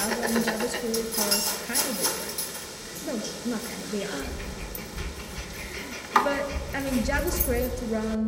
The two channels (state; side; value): identical; both; correlation 1.00